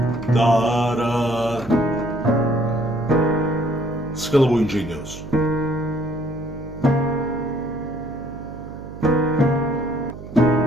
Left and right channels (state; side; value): noise; right; hum, 13 dB below the sound